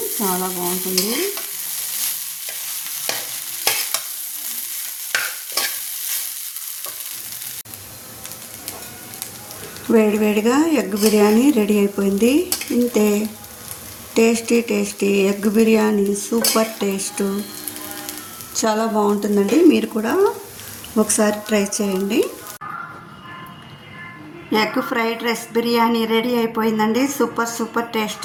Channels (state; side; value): identical; both; correlation 1.00